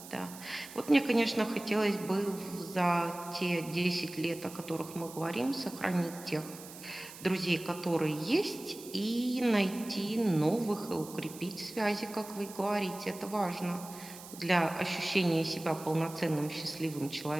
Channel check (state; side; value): noise; right; hiss, 15 dB below the sound